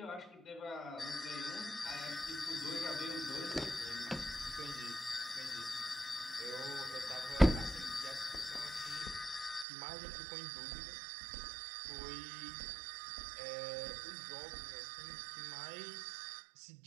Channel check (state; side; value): drops out; left; at 9.7 s